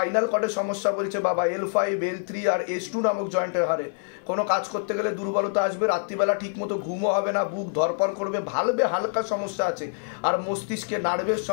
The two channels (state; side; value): silent; right; 61 dB below the other